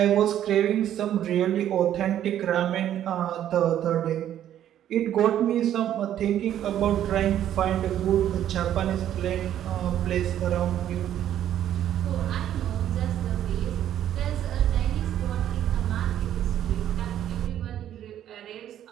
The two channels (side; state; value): left; quieter; 11.1 dB